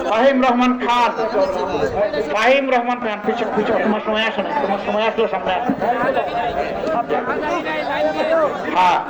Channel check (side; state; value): both; identical; correlation 1.00